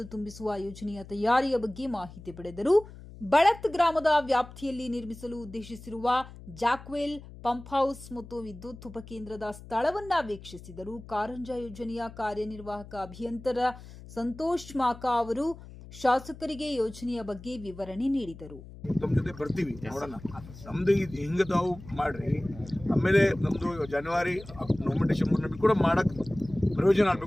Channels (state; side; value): noise; left; hum, 16 dB below the sound